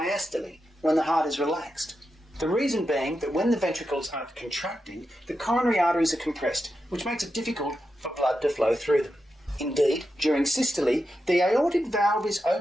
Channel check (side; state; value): both; normal; correlation 0.88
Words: when the heart is relaxed. The reason being that when the ventricles aren't contracting, the coronary arteries are compressed, which makes it difficult for blood to flow through them. Indeed, during systole, the aortic valve is